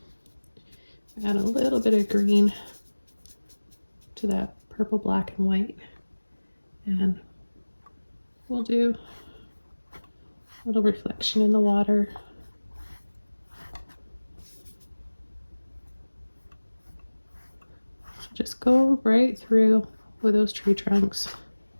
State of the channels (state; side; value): inverted; both; correlation -1.00